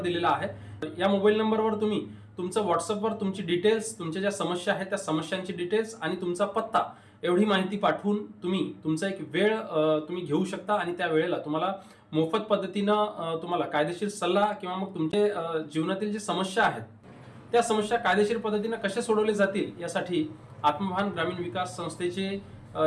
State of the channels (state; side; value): identical; both; correlation 1.00